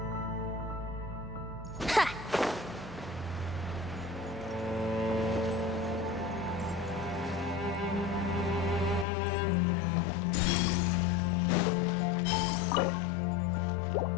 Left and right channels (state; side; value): drops out; right; at 9.1 s